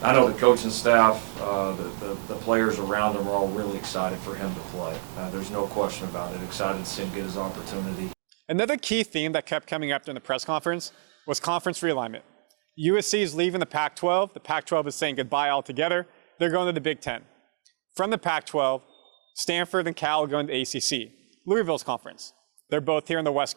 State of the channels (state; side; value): silent; left; digital silence